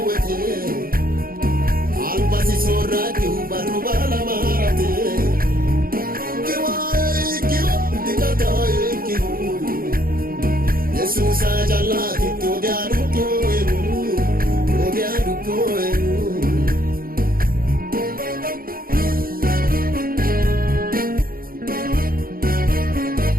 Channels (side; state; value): left; late; 0.42 ms